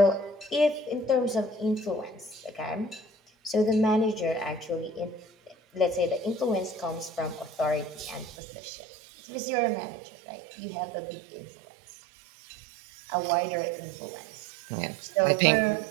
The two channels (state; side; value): drops out; left; at 8.3 s